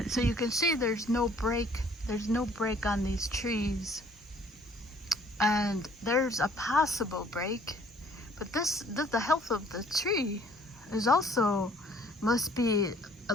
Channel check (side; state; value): both; normal; correlation 0.58